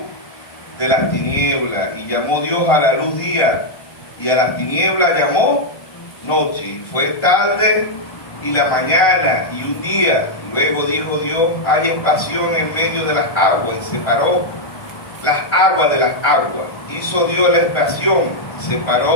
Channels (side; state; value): right; late; 1.5 ms